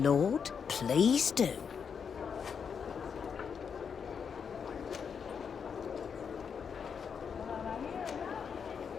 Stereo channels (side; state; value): right; quieter; 6.6 dB